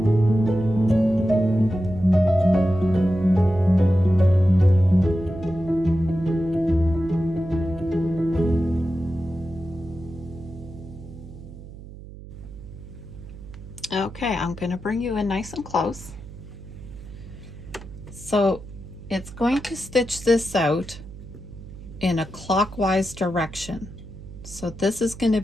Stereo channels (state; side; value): noise; right; hum, 15 dB below the sound